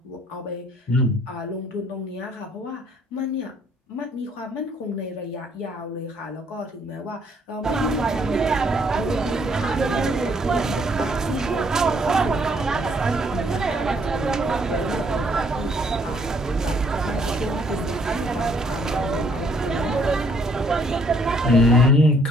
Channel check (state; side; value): normal; both; correlation 0.66